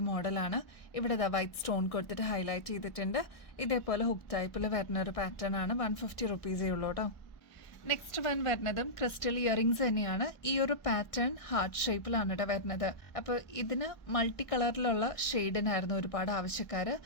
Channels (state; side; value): late; right; 1.1 ms